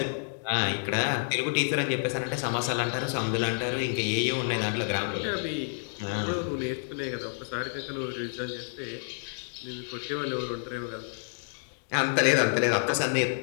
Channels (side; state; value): right; silent; digital silence